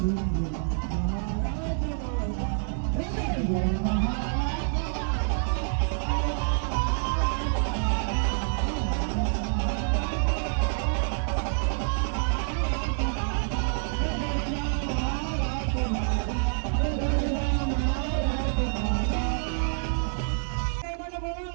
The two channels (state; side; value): silent; left; digital silence